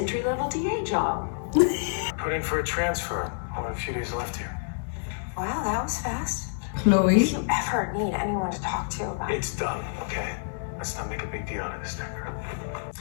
DA job. Put in for a transfer. Only a few days left here. Wow, that was fast. Chloe. If you ever need anyone to talk to about It's done, okay? Let's not make a big deal out of this thing.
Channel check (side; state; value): right; silent; digital silence